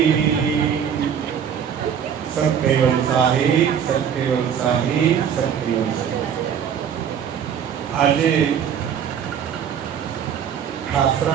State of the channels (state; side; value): quieter; left; 8.2 dB